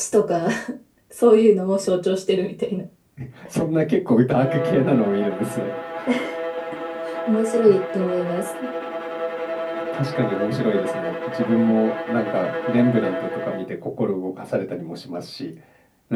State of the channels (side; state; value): both; identical; correlation 1.00